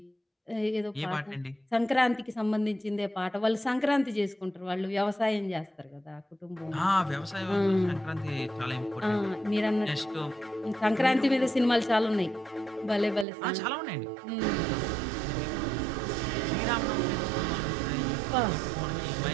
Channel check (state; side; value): drops out; left; at 13.2 s